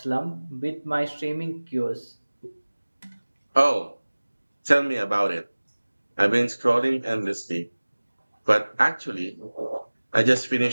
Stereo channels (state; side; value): inverted; both; correlation -1.00